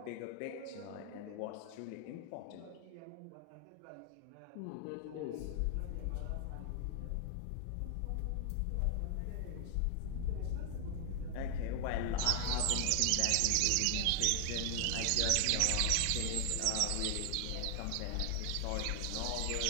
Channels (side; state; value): both; different; correlation 0.00